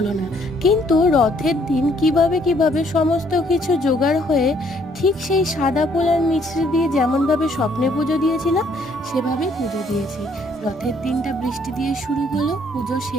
না। কিন্তু রথের দিন কিভাবে সমস্ত কিছু জোগাড় হয়ে ঠিক সেই সাদা ফুল আর মিছরি দিয়ে যেমনভাবে স্বপ্নে পুজো দিয়েছিলাম সেভাবেই পুজো দিয়েছি। রথের দিনটা বৃষ্টি দিয়ে শুরু হলো, পুজো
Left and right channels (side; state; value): both; normal; correlation 0.65